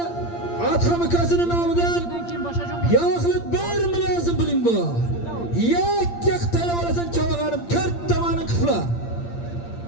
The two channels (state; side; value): late; right; 8.7 ms